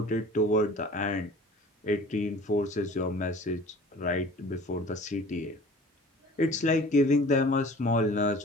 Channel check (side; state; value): both; normal; correlation 0.45